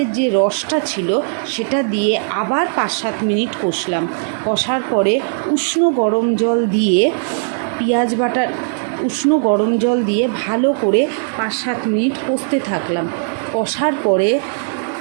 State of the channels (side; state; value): left; silent; 68 dB below the other